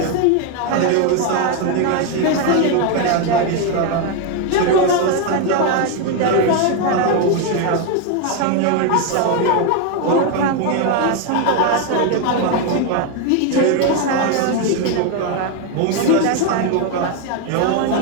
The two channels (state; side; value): different; both; correlation 0.01